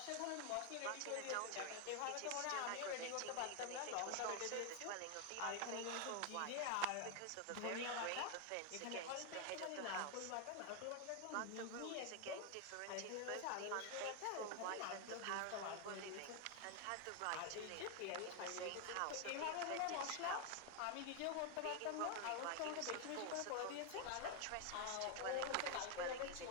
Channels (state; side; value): different; both; correlation 0.01